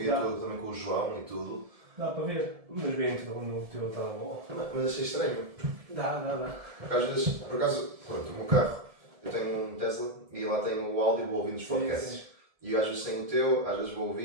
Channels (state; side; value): late; left; 1.7 ms